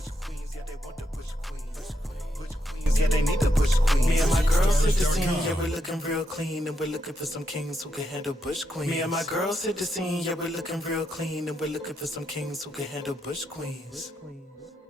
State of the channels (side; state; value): both; normal; correlation 0.81